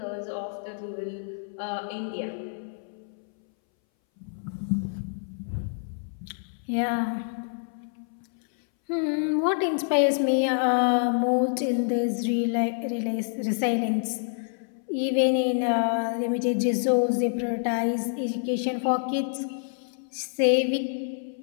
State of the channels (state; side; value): silent; right; 60 dB below the other